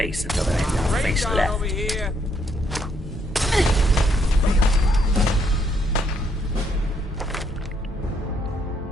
until there ain't no face left. Over here.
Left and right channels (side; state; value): both; normal; correlation 0.72